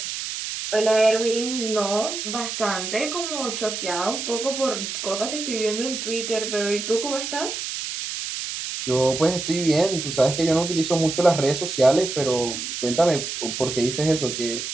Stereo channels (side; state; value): right; noise; hiss, 5 dB below the sound